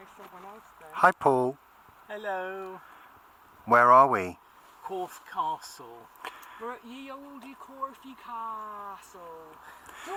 to someone else then. Hi, Paul. Hello. Where are we? Corfe Castle. We're at ye olde Corfe Castle. Do you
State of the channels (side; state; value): both; identical; correlation 1.00